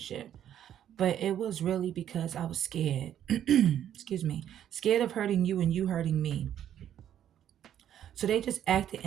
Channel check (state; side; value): quieter; left; 10.5 dB